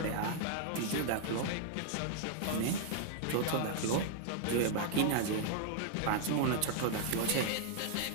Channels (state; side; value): different; both; correlation -0.01